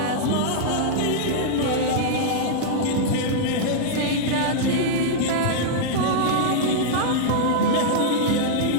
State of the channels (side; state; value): both; different; correlation -0.02